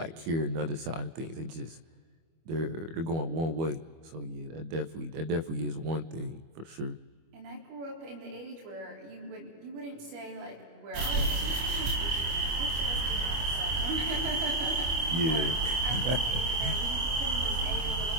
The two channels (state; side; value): late; left; 25 ms